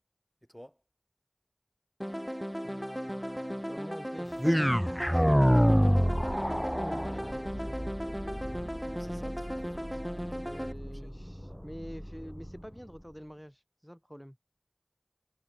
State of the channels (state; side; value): identical; both; correlation 1.00